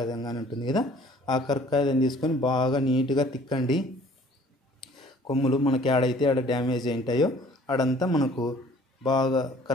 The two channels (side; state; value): both; normal; correlation 0.54